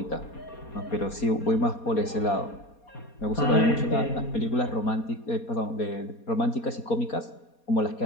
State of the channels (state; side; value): late; right; 4.2 ms